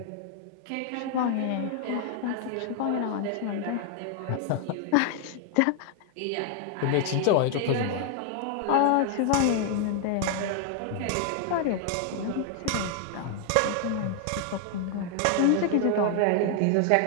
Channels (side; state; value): both; different; correlation 0.00